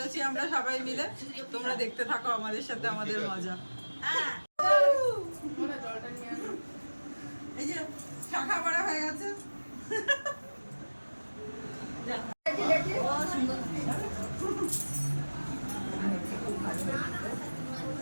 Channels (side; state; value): both; inverted; correlation -1.00